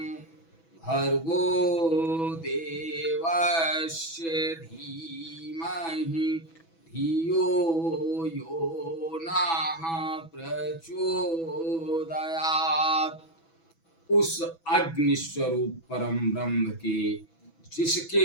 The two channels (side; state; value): right; late; 6.1 ms